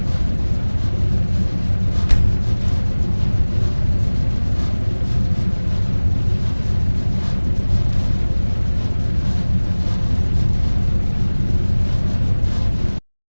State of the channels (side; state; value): both; inverted; correlation -1.00